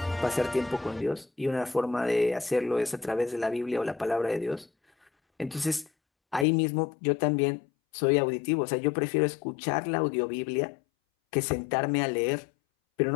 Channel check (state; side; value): drops out; right; at 6.5 s